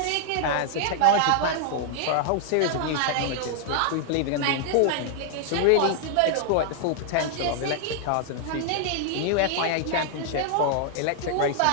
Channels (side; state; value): both; different; correlation 0.00